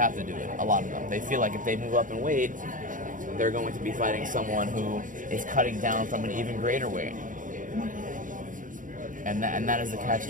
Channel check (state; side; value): late; left; 0.38 ms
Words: to do it. A lot of them. They feel like if they move up in weight, they're going to be fighting someone who is cutting down from an even greater weight. And that is the